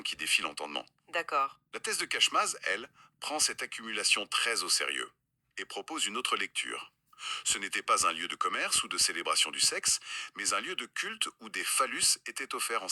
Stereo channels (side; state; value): both; identical; correlation 1.00